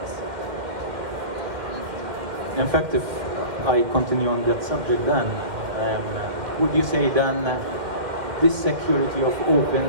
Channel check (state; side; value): late; left; 2.1 ms